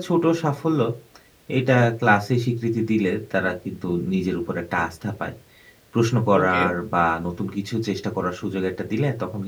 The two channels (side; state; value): both; identical; correlation 1.00